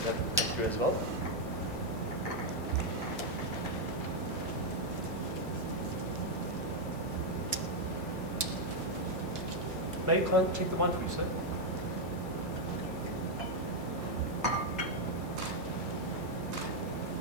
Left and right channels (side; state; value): both; normal; correlation 0.00